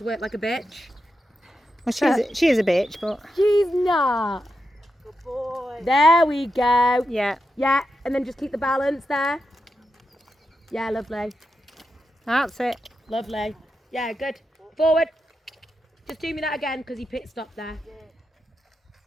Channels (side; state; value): both; normal; correlation 0.87